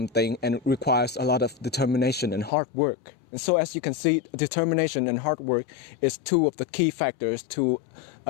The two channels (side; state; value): right; drops out; at 2.5 s